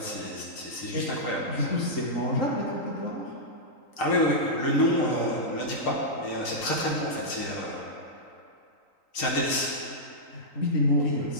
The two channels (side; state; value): right; late; 3.9 ms